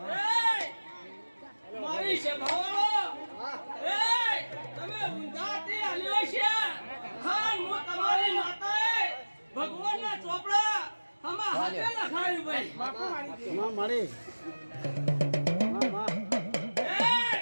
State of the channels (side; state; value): both; inverted; correlation -1.00